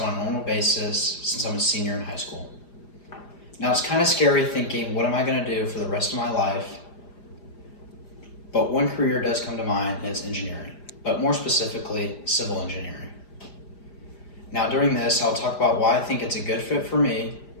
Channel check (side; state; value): right; late; 5.0 ms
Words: on a normal basis since I'm a senior in high school. Now it's kind of scary thinking, what am I going to do for the rest of my life? But one career does come to mind, and it's engineering, but more specifically, civil engineering. Now during this, I'll talk about why I think it's a good fit for me